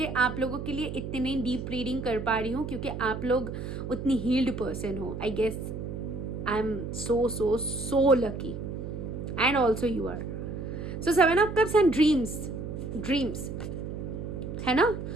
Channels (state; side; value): noise; right; hum, 6 dB below the sound